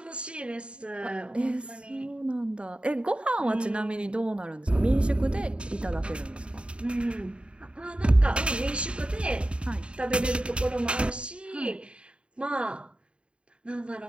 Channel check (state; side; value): late; left; 0.056 ms